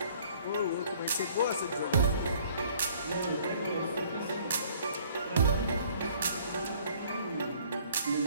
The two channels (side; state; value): both; inverted; correlation -0.57